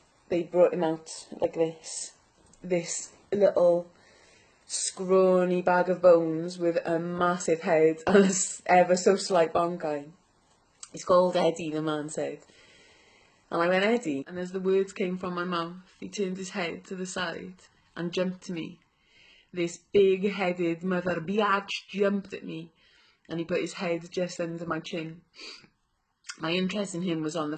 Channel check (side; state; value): both; identical; correlation 1.00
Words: they brought him out like this little scrawny bag of bones with a massive head and a ever so slight bonkai. He's called Eddie, the man said. And I went, Eddie, and as the words came from my mouth, he turned his head to the side and jumped to me. This big-headed mother biatch jumped at me, and he put his head just under my chin. My interest in him was on the